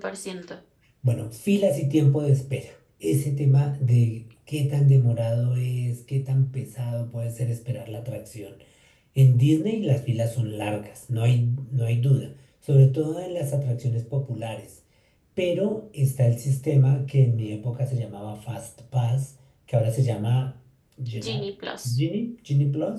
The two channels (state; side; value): identical; both; correlation 1.00